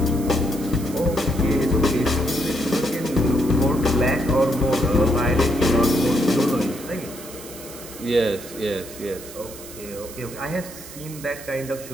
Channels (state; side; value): noise; right; hiss, 15 dB below the sound